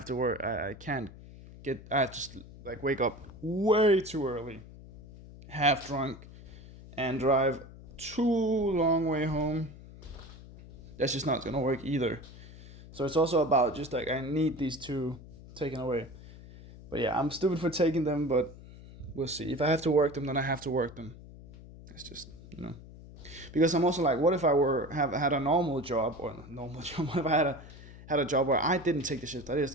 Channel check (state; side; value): noise; left; hum, 17 dB below the sound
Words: to work. I can't get. I have to like wake up way too early, half drunk, and drive too long way home. That's just not gonna work either. So it's also about just like I need these two taken away. But yeah, I'm stupid for taking them, but we'll see. If I have to work them, then I have to work them. It's just because I'm also like, what if I have had a normal job or normal job? What if I had a job where I didn't take the shift? I